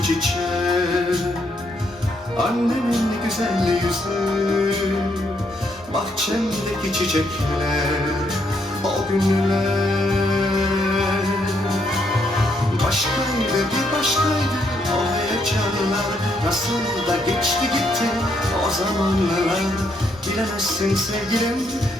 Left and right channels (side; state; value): both; normal; correlation 0.74